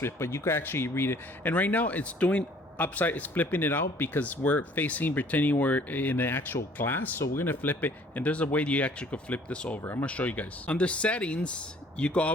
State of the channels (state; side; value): normal; both; correlation 0.56